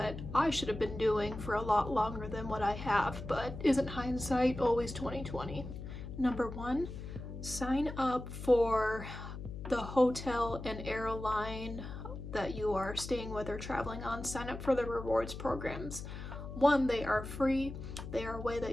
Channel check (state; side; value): noise; left; hum, 9 dB below the sound